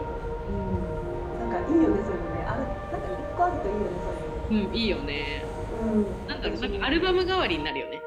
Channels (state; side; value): identical; both; correlation 1.00